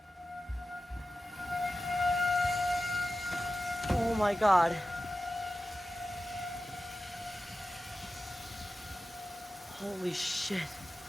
Oh my god. Holy shit.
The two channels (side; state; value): both; normal; correlation 0.94